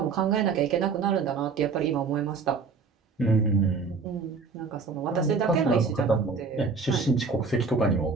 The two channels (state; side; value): quieter; left; 4.9 dB